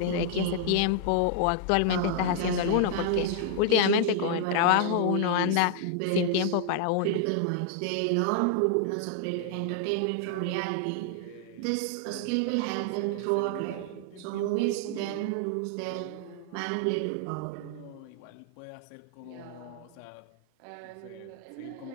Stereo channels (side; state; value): both; different; correlation 0.00